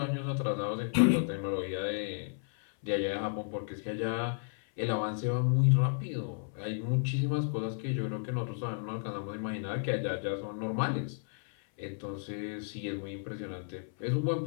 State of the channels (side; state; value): right; silent; 56 dB below the other